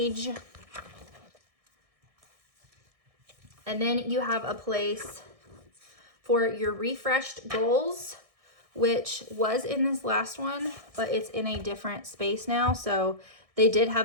And then you have a place for your refreshed goals, which was in this last one, but it's in a different space now. So they did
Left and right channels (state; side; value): late; left; 1.6 ms